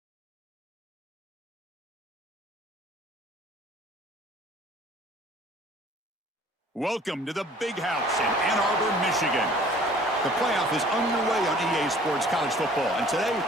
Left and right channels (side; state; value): both; normal; correlation 0.52